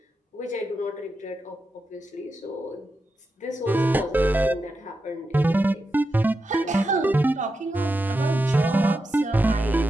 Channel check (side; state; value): both; normal; correlation 0.88